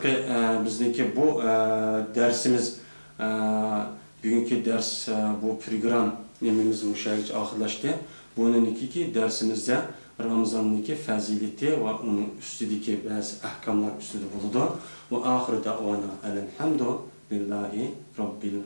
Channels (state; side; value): inverted; both; correlation -1.00